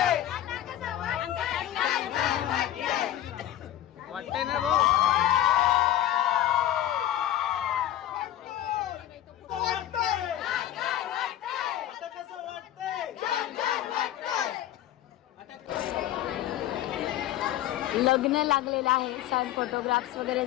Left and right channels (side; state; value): right; quieter; 12.5 dB